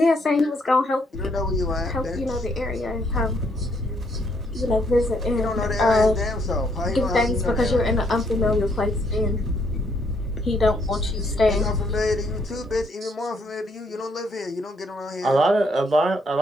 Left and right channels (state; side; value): normal; both; correlation 0.71